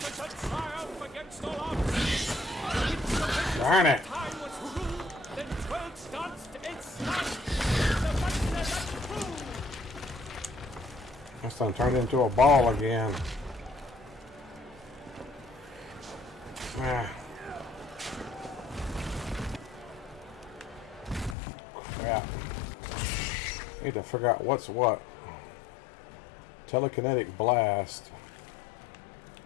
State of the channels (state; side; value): drops out; right; at 21.4 s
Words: shall triumph against all odds. Darn it. Time was ruled, then 12 danced its sun. The master that proved. This thing turned into a ball again. Ah. Crap. Need to figure out what's what. Telekinetic blast.